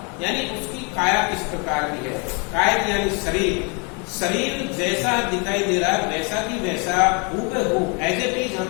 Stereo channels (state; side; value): quieter; right; 33.5 dB